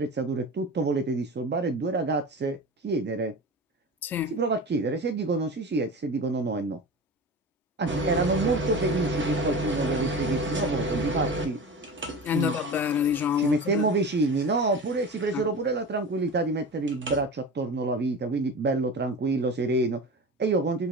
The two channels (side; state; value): both; normal; correlation 0.31